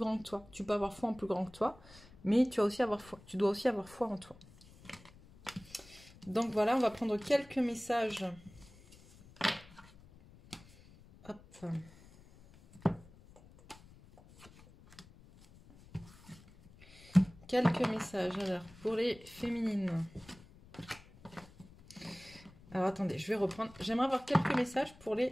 que toi. Tu peux avoir foi en plus grand que toi, mais tu dois aussi avoir foi en toi. Donc voilà, on va prendre quelques messages. Hop. Quelques messages, alors, pour les féminines. Alors, attendez, je vais reprendre. J'aimerais avoir quelques messages pour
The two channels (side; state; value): left; noise; rumble, 23 dB below the sound